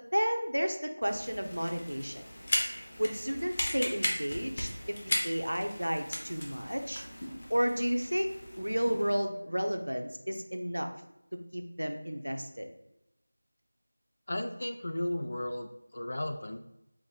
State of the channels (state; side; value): inverted; both; correlation -0.99